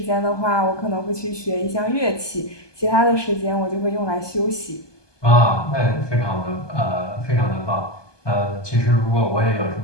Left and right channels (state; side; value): late; right; 1.2 ms